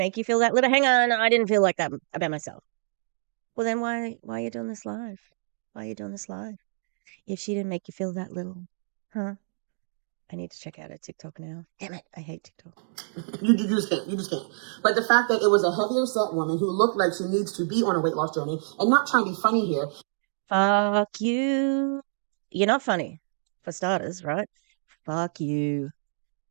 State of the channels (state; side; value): silent; left; digital silence